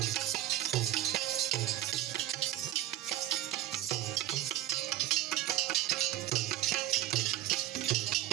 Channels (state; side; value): quieter; left; 14.5 dB